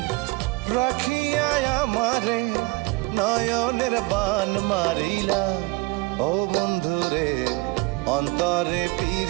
রাখিয়া আমারে নয়নের বান মারিলা। ও বন্ধুরে অন্তরে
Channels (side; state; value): left; quieter; 24.0 dB